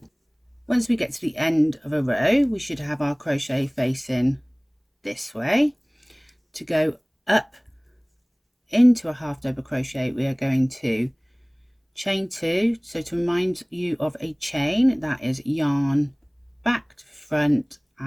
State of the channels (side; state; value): both; identical; correlation 1.00